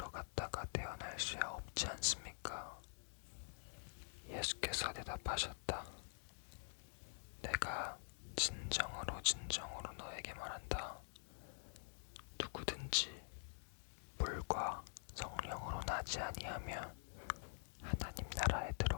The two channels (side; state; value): right; silent; digital silence